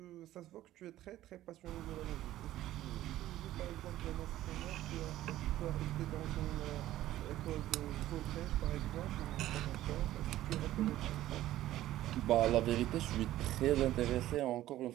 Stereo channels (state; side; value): quieter; left; 14.3 dB